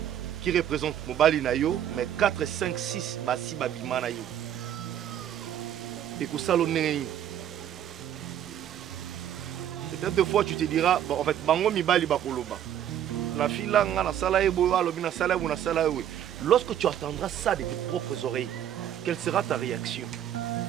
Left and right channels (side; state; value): left; quieter; 10.5 dB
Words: qui représente Mobali Nayo, mais 4, 5, 6 Basi Babima Nayo. Et que ça l'on peut-être deux fois tu te diras, bon, en fait, Bango Mibali Bakoloba. La fille là, na sala ebo, alobina sala ou na sala ebo. Lorsque tu entendras ça de tes propres oreilles, quelle sera ta réaction?